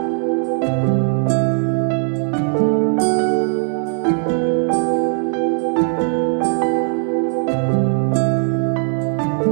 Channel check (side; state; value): left; silent; 60 dB below the other